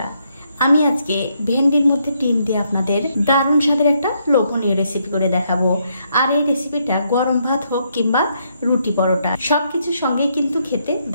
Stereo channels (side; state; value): both; inverted; correlation -0.75